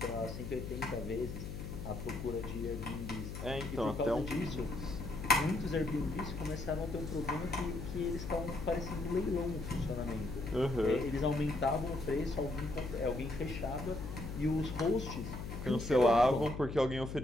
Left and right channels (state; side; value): noise; left; hum, 7 dB below the sound